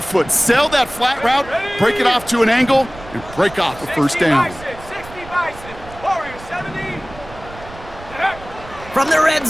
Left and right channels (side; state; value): right; noise; rumble, 17 dB below the sound